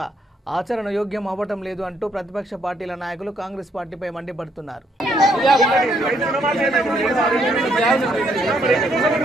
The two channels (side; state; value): both; normal; correlation 0.71